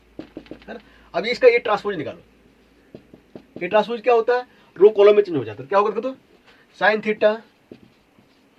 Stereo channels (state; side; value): identical; both; correlation 1.00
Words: है ना। अब इसका ये ट्रांसपोज निकालो, ये ट्रांसपोज क्या होता है, रो कॉलम में चेंज हो जाता है। क्या होगा, तो साइन थीटा